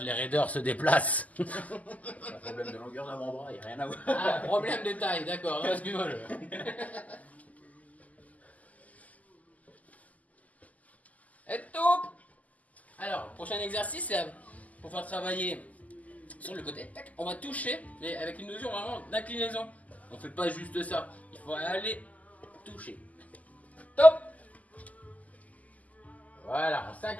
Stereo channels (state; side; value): late; right; 0.076 ms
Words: les raideurs se déplacent. Un problème de longueur d'avant-bras, il n'y a rien à voir. Ah, problème de taille, d'accord. Excuse-moi. Et top. Alors, prochain exercice, c'est pour faire travailler sur le côté. Tac, on va toucher, mais avec une notion vraiment d'inclinaison. On fait pas juste ça. Il faut aller toucher. Top. Voilà, on